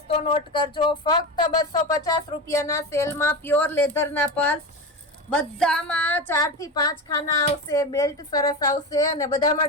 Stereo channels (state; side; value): normal; both; correlation 0.22